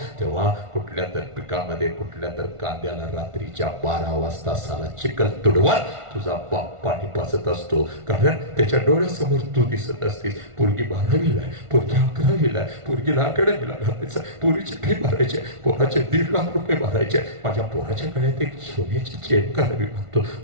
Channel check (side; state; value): left; late; 1.5 ms